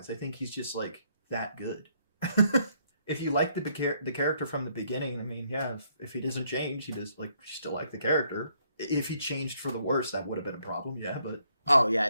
I think he's just like that good. If you like the character from the beginning, I mean, yeah, if he doesn't change, he does like you still like the character. If he changed for the worse, that would have been a problem. Yeah, but oh yeah,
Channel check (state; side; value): inverted; both; correlation -0.70